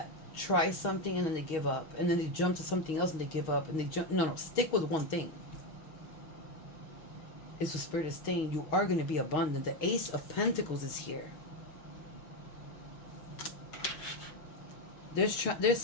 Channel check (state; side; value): late; right; 6.4 ms